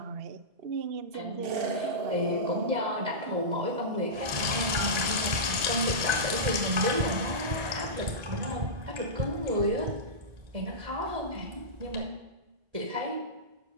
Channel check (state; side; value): late; left; 1.3 ms